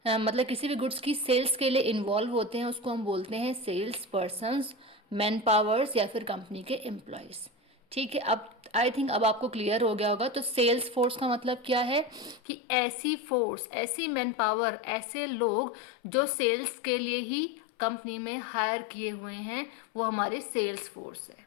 मतलब किसी भी गुड्स की सेल्स के लिए इन्वॉल्व होते हैं उसको हम बोलते हैं सेल्स पर्सन्स, मैन पावर्स या फिर कंपनी के एम्प्लॉयज। ठीक है, अब आई थिंक अब आपको क्लियर हो गया होगा। तो सेल्स फोर्स का मतलब क्या है कि ऐसी फोर्स, ऐसी मैन पावर, ऐसे लोग जो सेल्स के लिए ही कंपनी में हायर किए हुए हैं, वो हमारे सेल्स फोर्स है।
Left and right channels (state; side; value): drops out; right; at 12.4 s